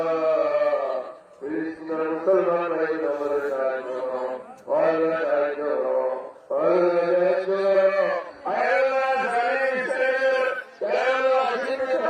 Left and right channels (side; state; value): both; identical; correlation 1.00